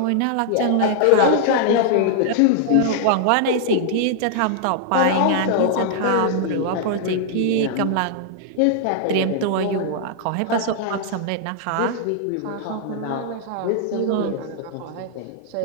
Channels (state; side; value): different; both; correlation -0.01